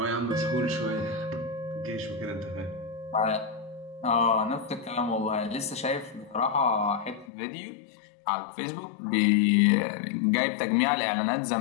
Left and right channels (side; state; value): right; drops out; at 7.3 s